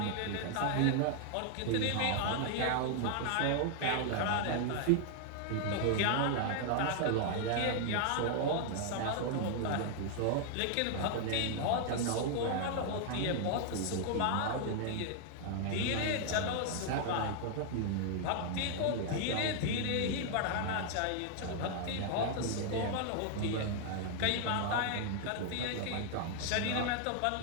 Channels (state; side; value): different; both; correlation 0.00